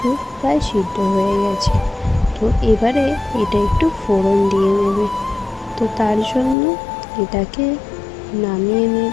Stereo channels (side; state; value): right; drops out; at 6.6 s